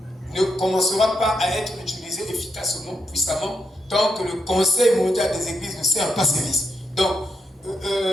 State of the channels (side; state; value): both; normal; correlation 0.81